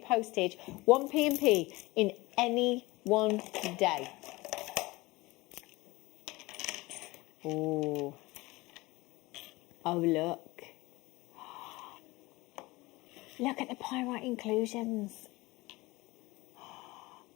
postage. 1p&p in any one day. Oh. Oh, look. Look at the pyrite inclusions.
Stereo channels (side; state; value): right; quieter; 21.4 dB